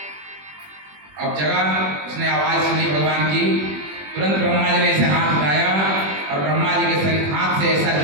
अब जगह उसने आवाज सुनी भगवान की, तुरंत ब्रह्मा जी ने ऐसे हाथ उठाया और ब्रह्मा जी के शरीर हाथ से ऐसा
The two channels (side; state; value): left; late; 21 ms